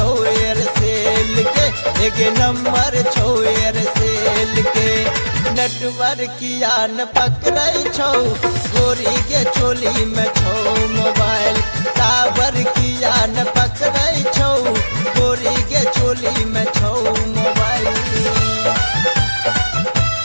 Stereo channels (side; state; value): both; inverted; correlation -1.00